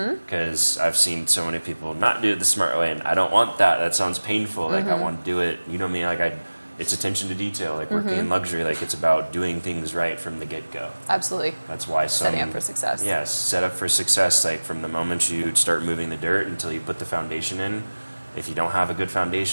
because I've seen so many people not do it the smart way, and I don't want that. That sounds painful. Like I want to do it, you know me, like it's attention to detail, like working in luxury, like it's about doing things right from the get-go. Absolutely. That's why setting up for success. Yes, set up for success, like from the moment you start moving the dirt until you put the foundation in. If you don't have a good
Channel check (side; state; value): both; inverted; correlation -1.00